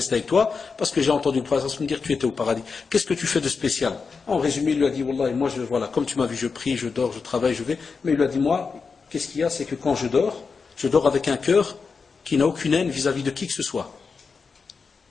avec toi, parce que j'ai entendu le prophète me dire que tu étais au paradis. Qu'est-ce que tu fais de spécial? En résumé, il lui a dit, Wallah, moi, voilà, comme tu m'as vu, je prie, je dors, je travaille, je vais. Mais il lui a dit, moi, qu'est-ce qu'il y a? C'est que quand je dors avec un cœur qui n'a aucune haine vis-à-vis de qui que ce soit.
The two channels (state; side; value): quieter; right; 5.0 dB